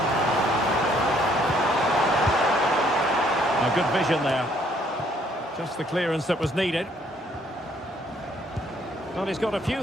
Good vision there. Just the clearance that was needed. Well, he's got a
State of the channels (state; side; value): normal; both; correlation 0.65